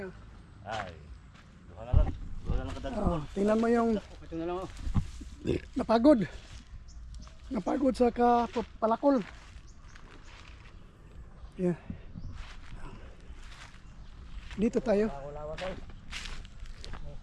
Yan. Ay. Duha na lang kadagdag. Tingnan mo yung Ito na lang napagod sa palakol. Yan. Dito tayo.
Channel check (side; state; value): both; identical; correlation 1.00